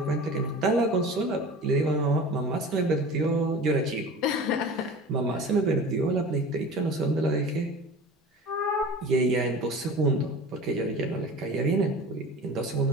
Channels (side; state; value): both; normal; correlation 0.37